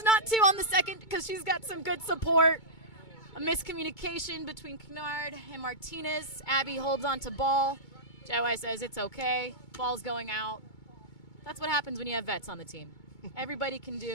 not to on the second because she's got some good support. A miscommunication between Kennard and Martinez. Abby holds on to ball. Jai says it's okay. Ball's going out. That's what happens when you have vets on the team. Everybody can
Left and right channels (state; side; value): late; right; 2.2 ms